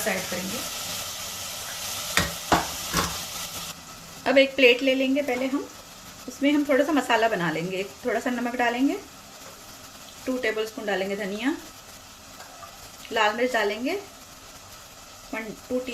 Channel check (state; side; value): identical; both; correlation 1.00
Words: ऐड करेंगे। अब एक प्लेट ले लेंगे पहले हम, उसमें हम थोड़ा सा मसाला बना लेंगे। थोड़ा सा नमक डालेंगे, 2 टेबलस्पून डालेंगे धनिया, लाल मिर्च डालेंगे 2